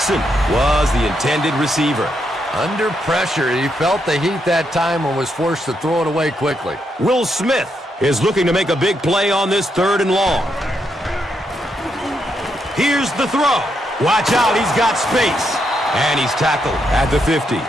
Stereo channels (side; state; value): both; normal; correlation 0.80